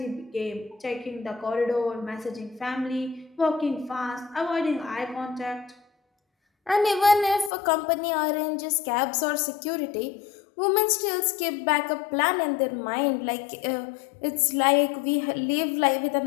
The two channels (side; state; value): right; drops out; at 7.5 s